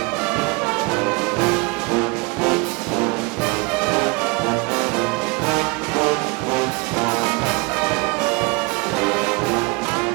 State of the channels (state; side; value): quieter; left; 27.8 dB